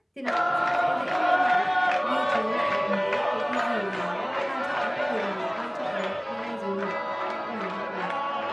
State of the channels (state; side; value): identical; both; correlation 1.00